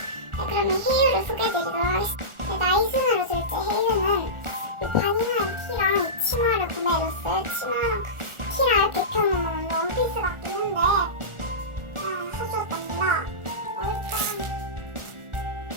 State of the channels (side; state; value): left; late; 1.4 ms